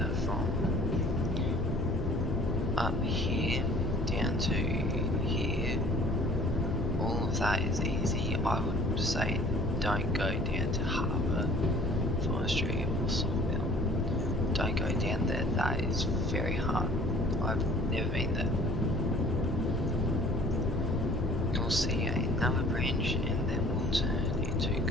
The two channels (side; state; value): both; normal; correlation 0.51